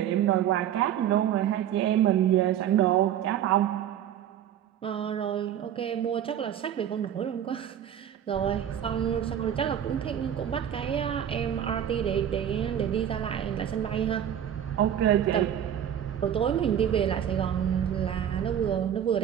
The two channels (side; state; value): left; quieter; 10.0 dB